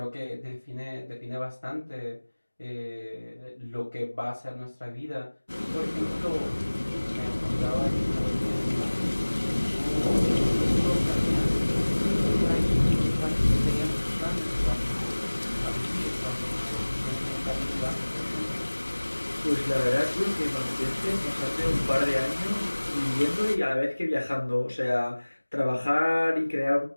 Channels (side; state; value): both; inverted; correlation -1.00